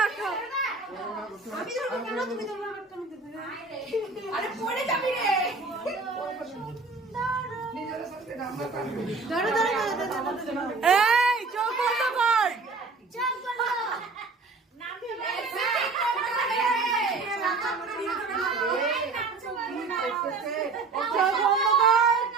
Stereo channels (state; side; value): quieter; left; 4.1 dB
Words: আসো। আরে পড়ে যাবি রে। ধরো ধরো এই চোখ বন্ধ কর। চোখ বন্ধ।